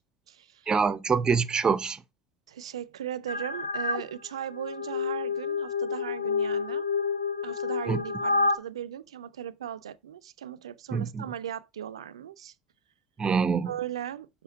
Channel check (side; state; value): both; normal; correlation 0.01